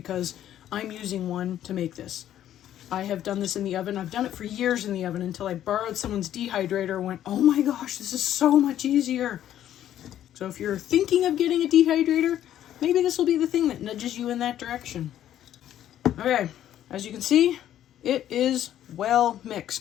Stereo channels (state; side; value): quieter; right; 11.5 dB